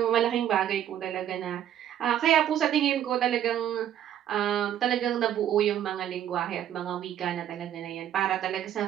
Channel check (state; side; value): quieter; left; 10.9 dB